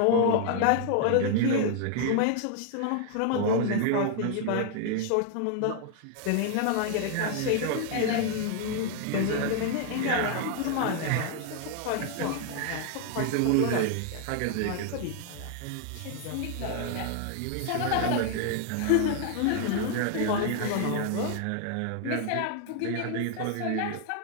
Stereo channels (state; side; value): different; both; correlation 0.00